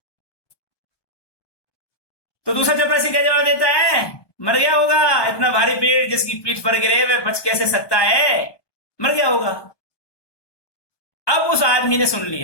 तो दूसरा चपरासी क्या जवाब देता है? मर गया होगा, इतना भारी पेड़ जिसकी पीठ पर गिरे वह बच कैसे सकता है, मर गया होगा। अब उस आदमी ने सुन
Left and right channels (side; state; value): right; late; 1.2 ms